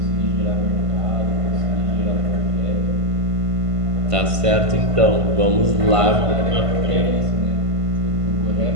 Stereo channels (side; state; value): left; late; 1.5 ms